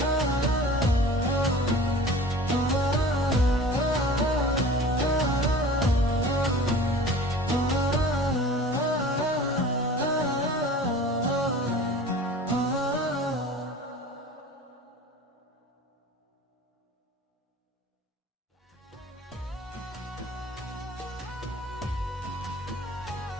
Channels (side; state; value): both; normal; correlation 0.42